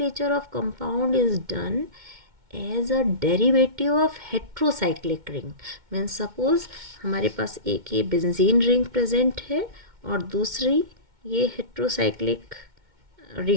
of compound is done as a derivative of heterocyclic ring. Means suppose हमारे पास एक ये बेंजीन रिंग प्रेजेंट है और दूसरी ये हेट्रोसाइक्लिक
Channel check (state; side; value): late; left; 2.2 ms